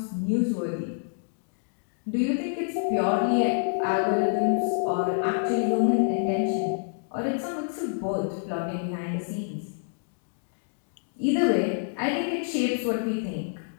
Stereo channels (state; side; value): silent; right; digital silence